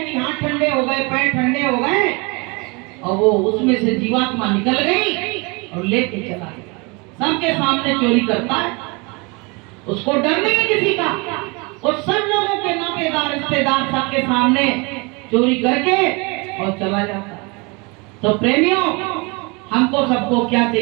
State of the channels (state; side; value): quieter; left; 28.8 dB